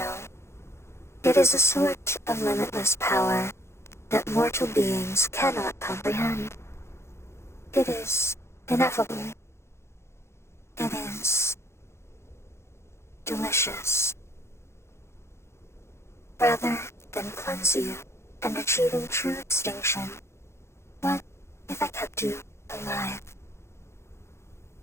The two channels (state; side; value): late; right; 0.13 ms